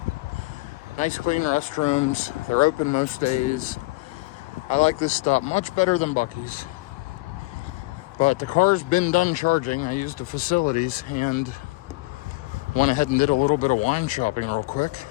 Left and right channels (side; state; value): right; quieter; 23.1 dB